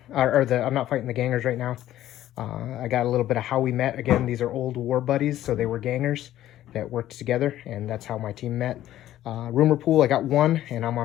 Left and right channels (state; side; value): quieter; right; 13.2 dB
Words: I'm not fighting the gangers right now. I got a little bit of how we met. Again, these are old war buddies, so they were gangers that worked together, and that's how my team met. Rumor pool, I got 1, and I'm